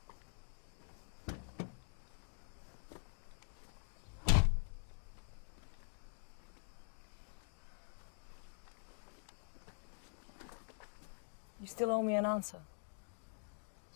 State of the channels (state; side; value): silent; right; digital silence